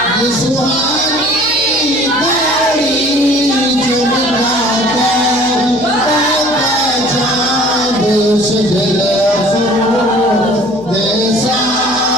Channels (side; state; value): left; noise; hum, 22 dB below the sound